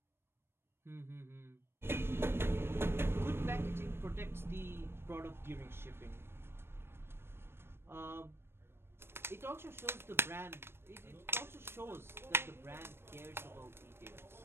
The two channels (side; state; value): left; late; 0.12 ms